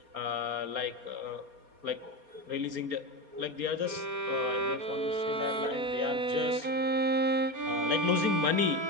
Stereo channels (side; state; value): left; late; 4.3 ms